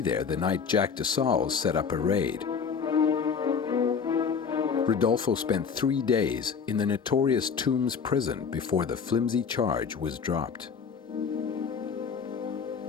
the night Jack de Sales set up a raid. Rodolfo spent 3 days in the notorious Tombs prison before the flimsy charge was dropped.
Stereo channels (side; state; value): right; quieter; 6.2 dB